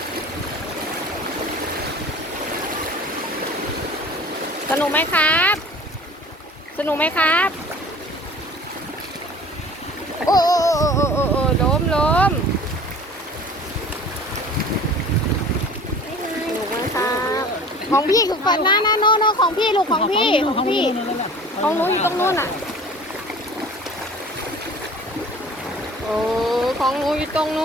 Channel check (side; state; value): both; normal; correlation 0.44